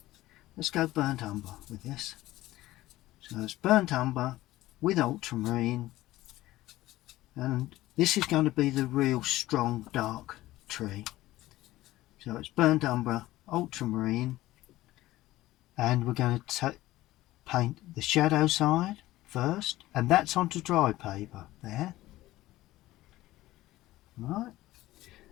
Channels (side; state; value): right; quieter; 16.6 dB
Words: Let's go burnt umber with this. So it's burnt umber with ultramarine, and this is going to be the real strong dark tree. So it's burnt umber, ultramarine, and we're going to paint the shadow side first, and that's onto dry paper there. Right,